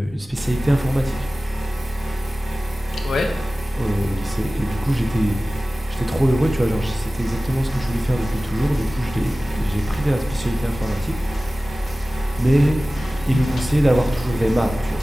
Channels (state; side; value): normal; both; correlation 0.97